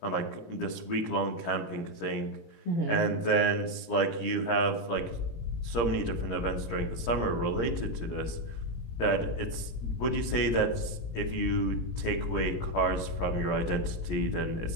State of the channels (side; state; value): right; late; 17 ms